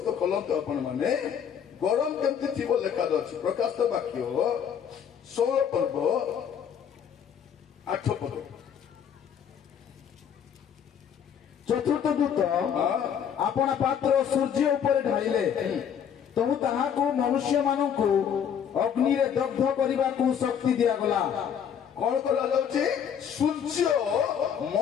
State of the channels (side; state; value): right; quieter; 8.2 dB